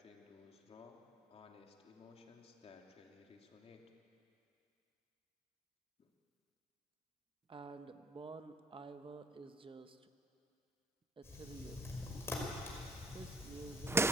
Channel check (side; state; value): both; normal; correlation 0.58